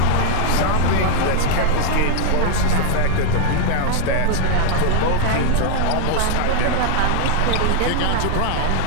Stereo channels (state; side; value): different; both; correlation 0.00